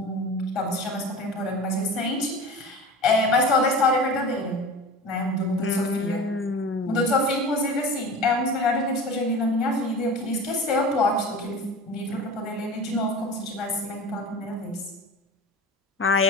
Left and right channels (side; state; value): both; normal; correlation 0.34